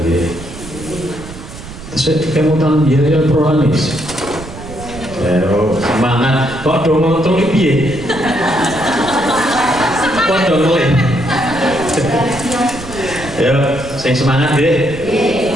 nggih. Terus kemutan biaya prolanis. Semangat kok do ngontrol piye? Kok do ngelih? Ya, sing semangat nggih.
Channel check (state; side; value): noise; right; rumble, 14 dB below the sound